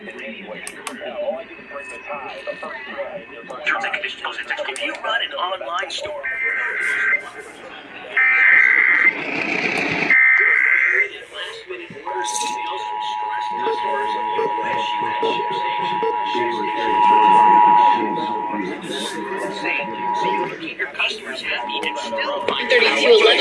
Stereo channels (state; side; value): identical; both; correlation 1.00